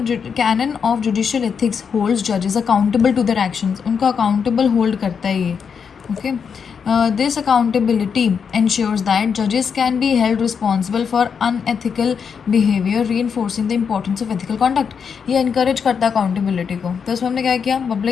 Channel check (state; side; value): quieter; right; 6.5 dB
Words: of judicial ethics holds जजेस अकाउंटेबल टू देयर एक्शंस। उनको अकाउंटेबल होल्ड करता है ये। Okay, this accountability ensures that judges can be held responsible for unethical behavior, reinforcing the importance of ethical conduct. ये encourage करता है accountability को। तो इसमें हमने क्या किया,